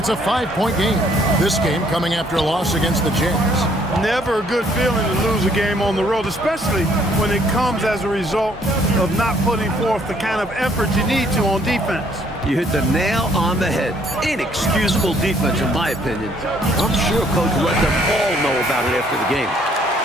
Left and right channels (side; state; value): both; normal; correlation 0.64